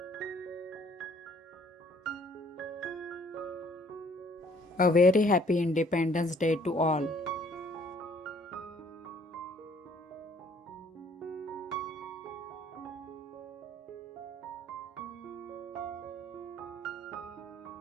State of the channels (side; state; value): both; normal; correlation 0.60